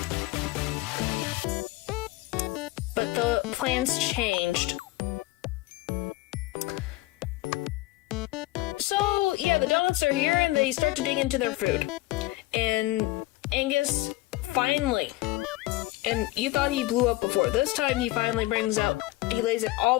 but the plans changed. So, yeah, the donuts are here, and they start to dig into their food. And Angus finally, and you thought he blew up before, this time he finally he lays it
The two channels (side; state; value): right; quieter; 19.0 dB